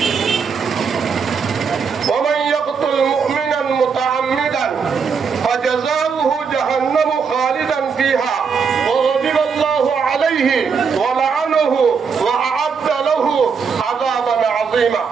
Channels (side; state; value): left; quieter; 5.9 dB